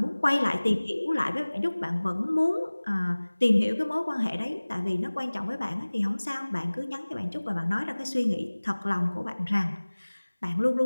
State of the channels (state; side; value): inverted; both; correlation -1.00